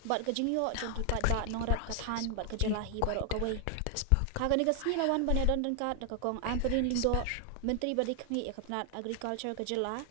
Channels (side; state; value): both; different; correlation 0.00